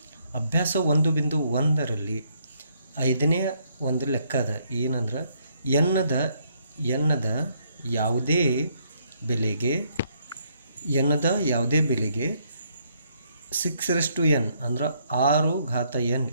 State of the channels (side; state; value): both; inverted; correlation -0.71